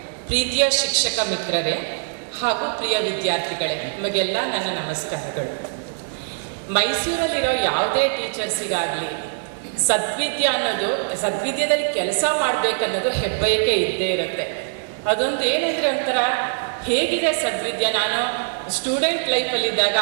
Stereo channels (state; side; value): silent; left; digital silence